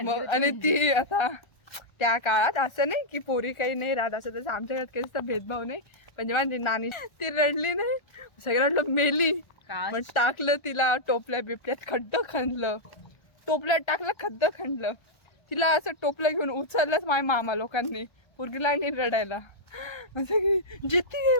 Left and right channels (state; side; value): late; right; 1.3 ms